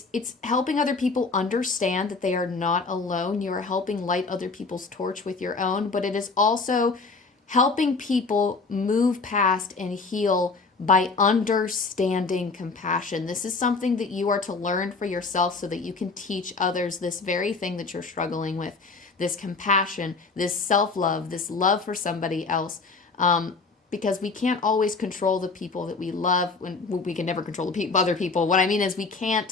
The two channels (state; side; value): quieter; right; 4.2 dB